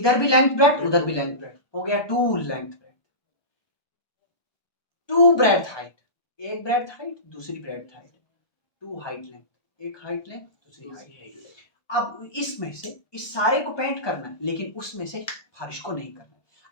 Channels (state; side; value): late; right; 1.4 ms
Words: भी लेंथ ब्रेड्थ, उधर भी लेंथ ब्रेड्थ, हो गया 2 लेंथ ब्रेड्थ, 2 ब्रेड्थ हाइट, एक ब्रेड्थ हाइट दूसरी ब्रेड्थ हाइट, 2 हाइट लेंथ, एक हाइट लेंथ दूसरी हाइट लेंथ। अब इसमें से इस सारे को पेंट करना है, लेकिन उसमें से फर्श को नहीं करना।